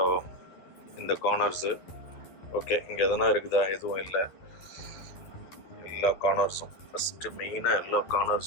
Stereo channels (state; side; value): late; right; 12 ms